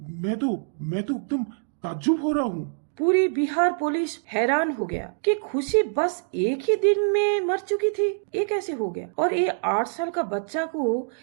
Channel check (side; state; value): left; silent; digital silence